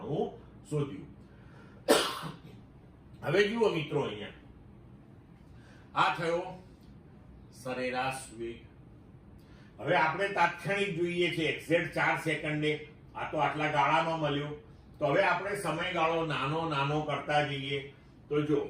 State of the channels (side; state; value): both; identical; correlation 1.00